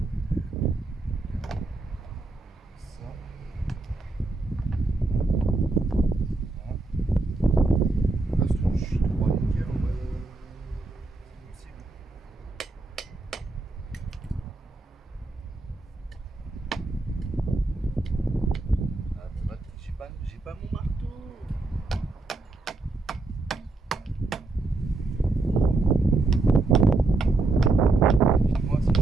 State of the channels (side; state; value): left; quieter; 3.4 dB